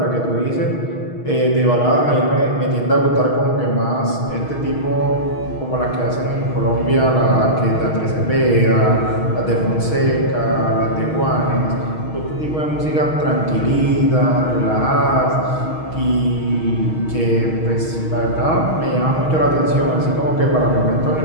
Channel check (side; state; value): right; late; 6.3 ms